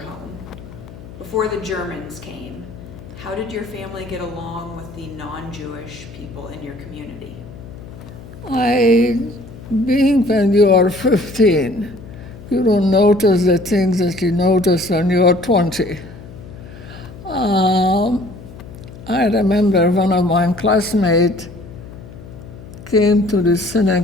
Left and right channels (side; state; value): left; noise; hum, 16 dB below the sound